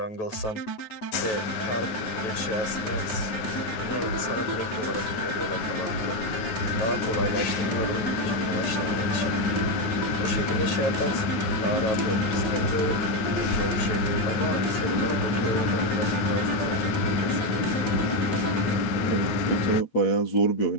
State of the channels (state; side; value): late; right; 9.5 ms